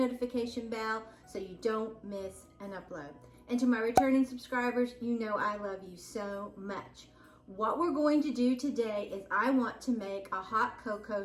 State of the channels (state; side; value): identical; both; correlation 1.00